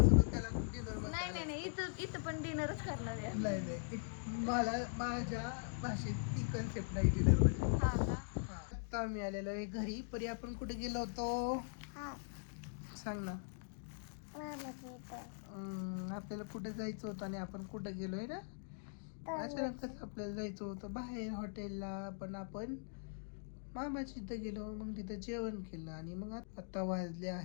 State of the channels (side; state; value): right; silent; digital silence